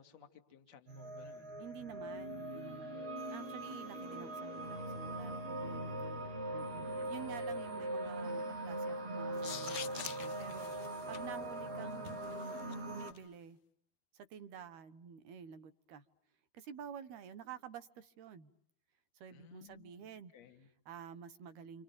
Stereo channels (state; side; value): late; left; 12 ms